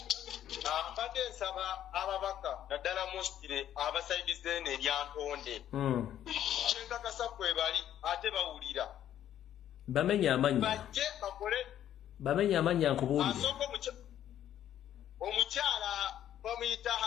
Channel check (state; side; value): quieter; right; 11.1 dB